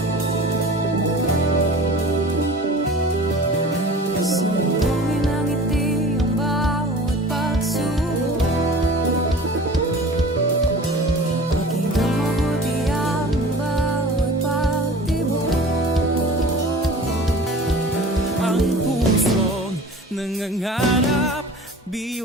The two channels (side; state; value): both; normal; correlation 0.41